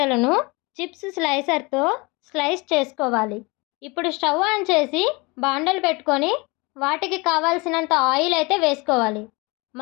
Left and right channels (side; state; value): right; quieter; 26.5 dB